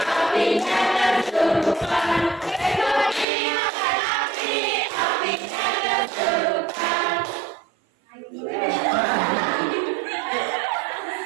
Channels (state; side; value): drops out; left; at 3.2 s